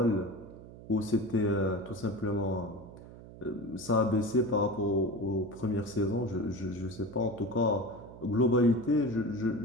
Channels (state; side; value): noise; right; hum, 17 dB below the sound